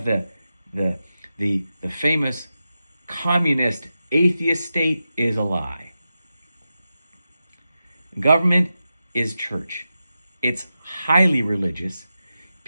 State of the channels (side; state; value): both; inverted; correlation -0.91